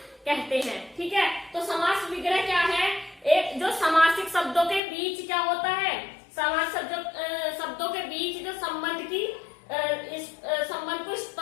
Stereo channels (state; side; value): drops out; right; at 4.8 s